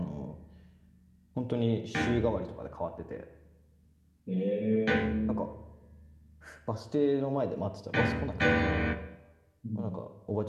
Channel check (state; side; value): identical; both; correlation 1.00